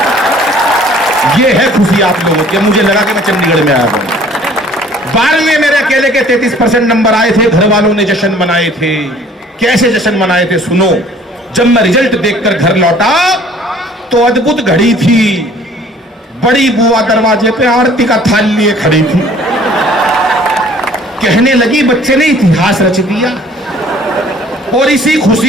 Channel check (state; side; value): normal; both; correlation 0.54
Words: ये है खुशी आप लोगों की। मुझे लगा कि मैं चंडीगढ़ में आया हूं। 12वीं में मेरे अकेले के 33% नंबर आए थे। घर वालों ने जश्न मनाए थे। कैसे जश्न मनाए थे सुनो। जब मैं रिजल्ट देखकर घर लौटा तो अद्भुत घड़ी थी। बड़ी बुआ दरवाजे पे आरती का थाल लिए खड़ी थी। कहने लगी बच्चे ने इतिहास रच दिया। और इसी